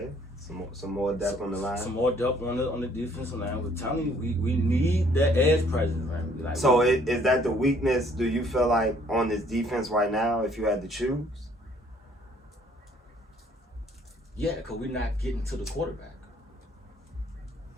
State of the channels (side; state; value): both; normal; correlation 0.62